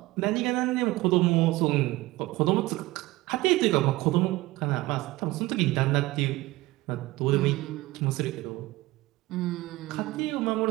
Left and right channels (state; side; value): quieter; left; 19.3 dB